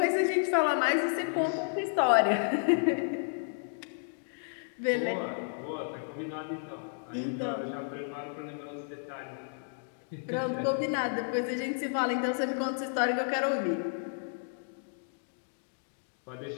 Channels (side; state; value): right; silent; digital silence